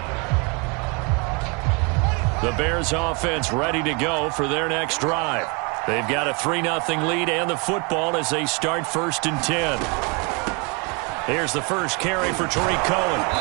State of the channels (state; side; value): quieter; left; 31.3 dB